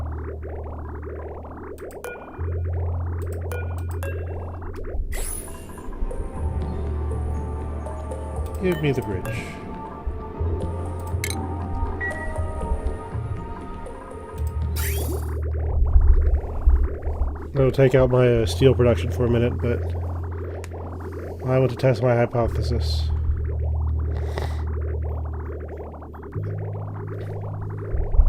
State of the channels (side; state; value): both; identical; correlation 1.00